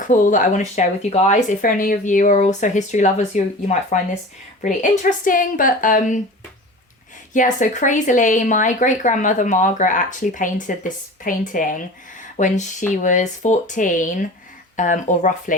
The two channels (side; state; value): both; normal; correlation 0.37